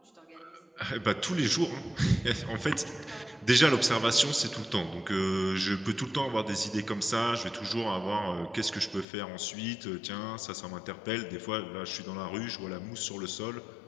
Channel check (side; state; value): right; drops out; at 9.1 s